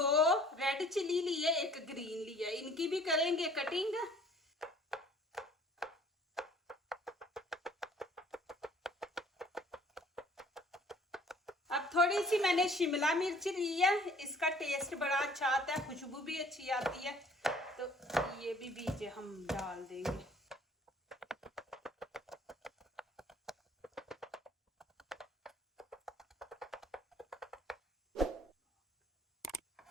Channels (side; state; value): both; normal; correlation 0.55